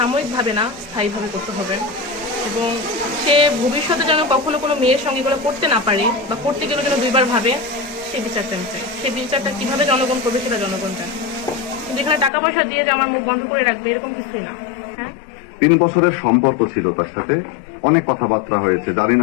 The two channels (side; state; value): right; drops out; at 12.3 s